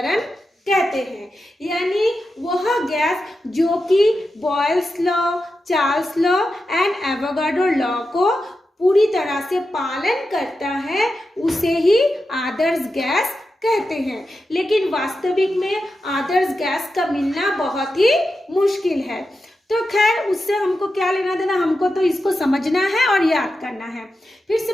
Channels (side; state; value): both; normal; correlation 0.90